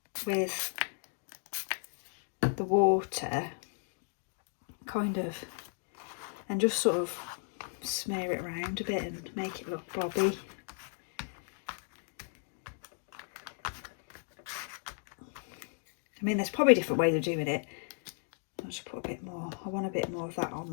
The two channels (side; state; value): right; silent; 54 dB below the other